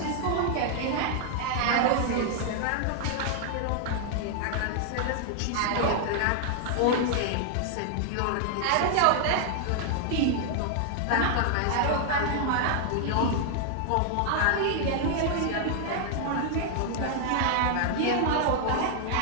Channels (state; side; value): different; both; correlation 0.00